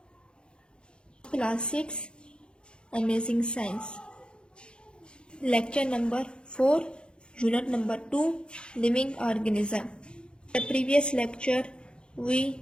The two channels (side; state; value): right; late; 0.053 ms